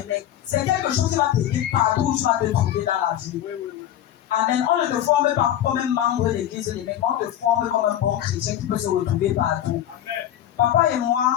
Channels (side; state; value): right; quieter; 11.6 dB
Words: C'est quelque chose qui va t'aider partout où tu vas te trouver dans la vie. Amen. On ne te forme pas comme un membre de l'église de l'évêque, on te forme comme un bon chrétien qui peut se retrouver partout. Amen. Papa et